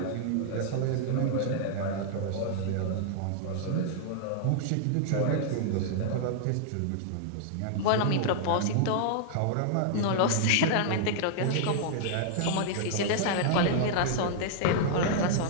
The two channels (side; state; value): both; different; correlation -0.01